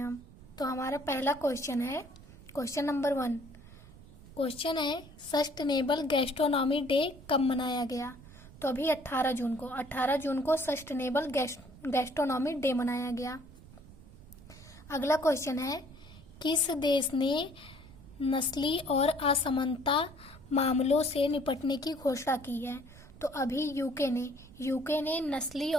हम। तो हमारा पहला क्वेश्चन है, क्वेश्चन नंबर 1। क्वेश्चन है सस्टेनेबल गैस्ट्रोनॉमी डे कब मनाया गया? तो अभी 18 जून को सस्टेनेबल गैस्ट्रोनॉमी डे मनाया गया। अगला क्वेश्चन है किस देश ने नस्ली और असमानता मामलों से निपटने की घोषणा की है? तो अभी यूके ने नस्ली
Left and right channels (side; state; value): right; noise; rumble, 19 dB below the sound